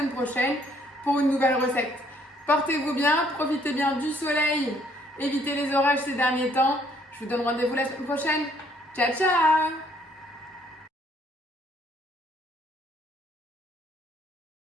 prochaine pour une nouvelle recette. Portez-vous bien, profitez bien du soleil, évitez les orages ces derniers temps. Je vous donne rendez-vous la semaine prochaine. Ciao, ciao!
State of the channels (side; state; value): both; normal; correlation 0.65